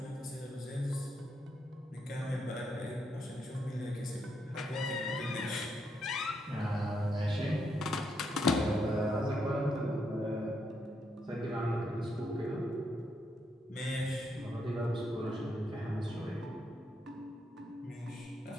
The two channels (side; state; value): both; normal; correlation 0.79